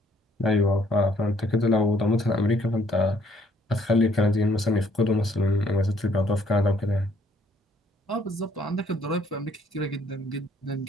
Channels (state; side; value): normal; both; correlation 0.65